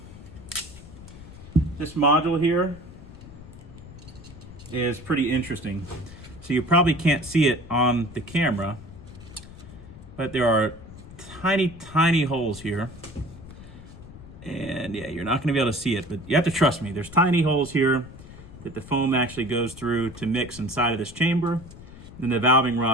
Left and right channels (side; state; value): left; noise; rumble, 17 dB below the sound